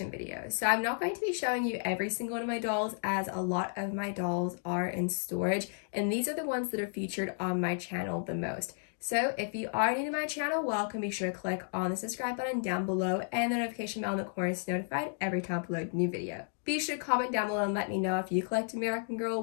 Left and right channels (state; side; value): silent; right; digital silence